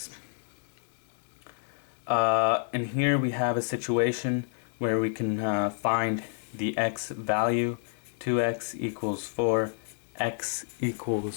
And here we have a situation where we can find the x value. 2x equals 4, x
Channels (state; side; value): silent; right; 58 dB below the other